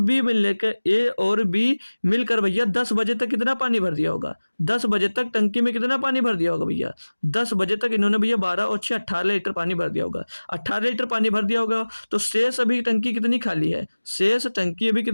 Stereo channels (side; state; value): both; inverted; correlation -1.00